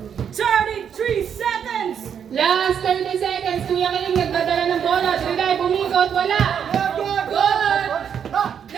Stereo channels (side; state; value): left; quieter; 8.0 dB